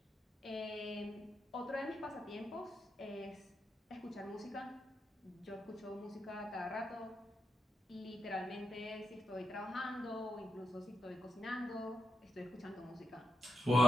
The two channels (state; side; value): normal; both; correlation 0.84